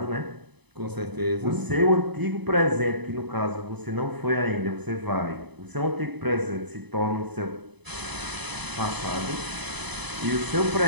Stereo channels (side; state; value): left; late; 0.99 ms